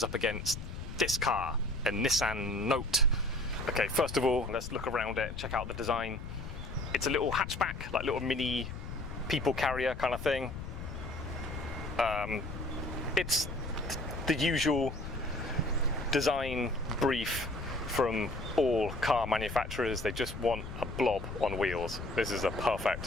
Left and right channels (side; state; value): left; noise; rumble, 8 dB below the sound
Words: up against this car, a Nissan Note. Okay, first of all, let's look around it and check out the design. It's a little hatchback, like little mini people carrier kind of thing. It's the usual design brief from all car manufacturers. They just want a blob on wheels. This is a